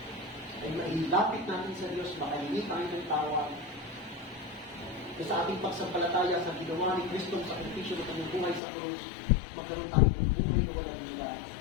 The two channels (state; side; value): drops out; right; at 8.6 s